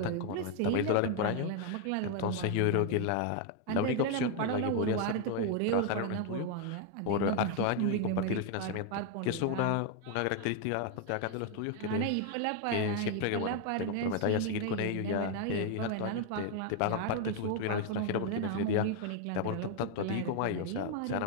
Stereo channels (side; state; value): both; different; correlation 0.01